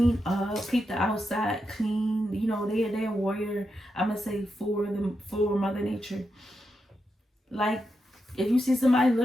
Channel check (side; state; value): both; normal; correlation 0.86